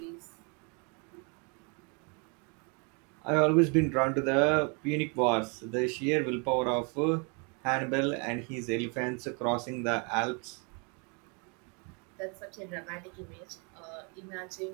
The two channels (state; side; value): quieter; left; 34.3 dB